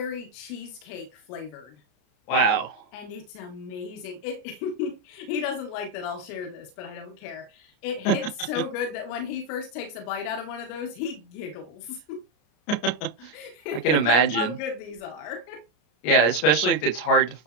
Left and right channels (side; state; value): right; late; 33 ms